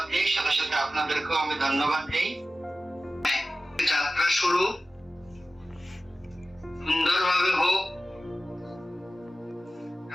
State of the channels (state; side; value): normal; both; correlation 0.95